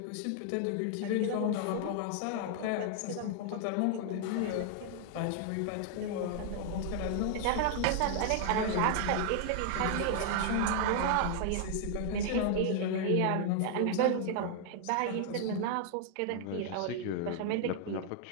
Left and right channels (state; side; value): different; both; correlation 0.00